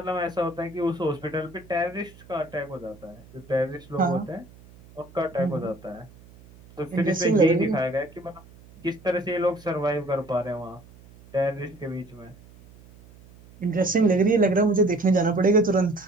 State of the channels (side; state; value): right; noise; hum, 23 dB below the sound